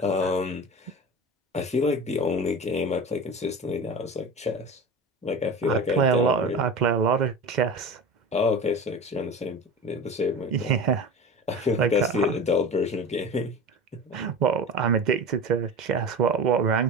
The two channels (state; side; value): normal; both; correlation 0.31